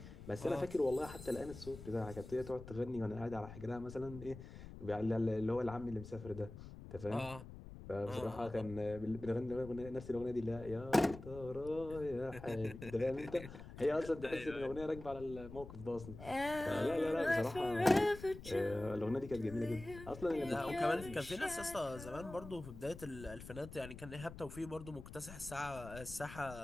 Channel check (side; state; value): left; noise; rumble, 13 dB below the sound